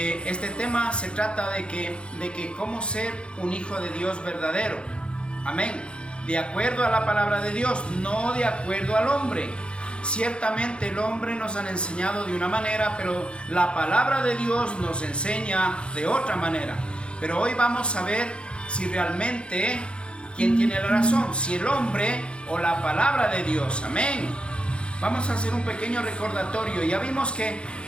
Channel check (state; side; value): late; right; 0.056 ms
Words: tema se trata de que cómo ser un hijo de Dios verdadero. Amén. De acuerdo a la palabra de Dios, no de acuerdo al hombre. Ciertamente el hombre nos han enseñado de una manera, pero la palabra de Dios nos enseña de otra manera. Pero hoy vamos a ver si realmente quién tiene la razón, si el hombre o la palabra de Dios. Amén. Vamos a hacer un pequeño recordatorio. Ya vimos que